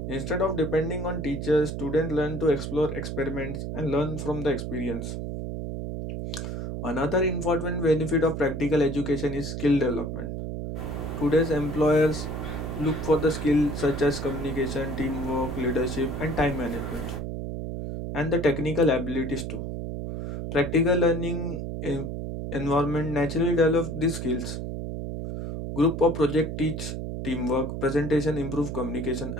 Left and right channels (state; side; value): noise; right; hum, 5 dB below the sound